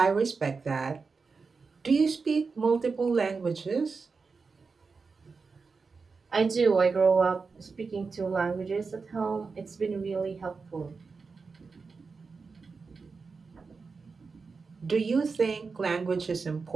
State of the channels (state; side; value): quieter; left; 4.7 dB